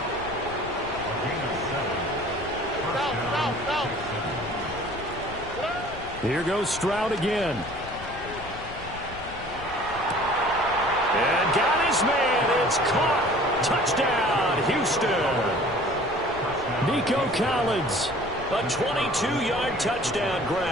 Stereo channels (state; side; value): noise; left; rumble, 15 dB below the sound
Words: Here goes Stroud again. And got his man. It's caught. Touchdown, Houston. Nico Collins. A 22-yard touchdown